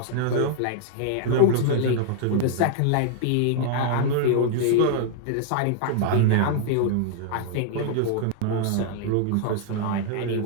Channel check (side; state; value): both; different; correlation -0.01